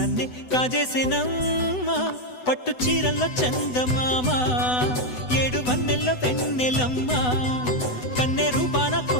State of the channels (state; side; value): late; right; 8.0 ms